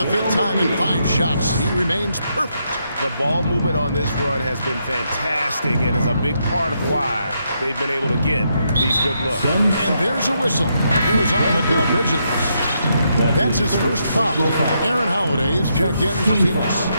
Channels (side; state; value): both; inverted; correlation -0.79